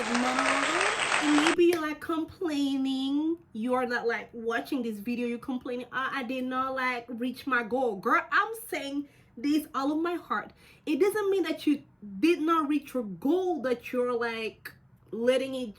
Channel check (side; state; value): both; identical; correlation 1.00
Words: mom. And maybe you're like complaining, you're not like watching this video, you're complaining, I did not like reach my goal. Girl, I'm saying this all of my heart. It doesn't mean that you did not reach your goal, that you're like letting it